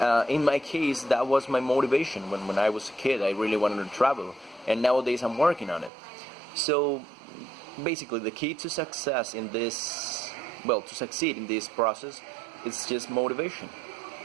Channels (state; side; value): drops out; left; at 5.9 s